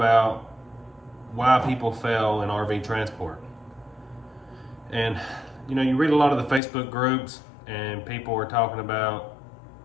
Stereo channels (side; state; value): right; drops out; at 6.6 s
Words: why people fail in RV transport. And you read a lot of the Facebook groups and people are talking about,